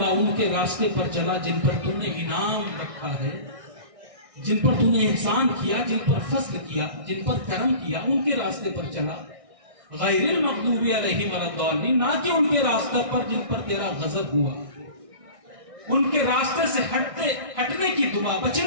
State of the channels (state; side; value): late; left; 1.6 ms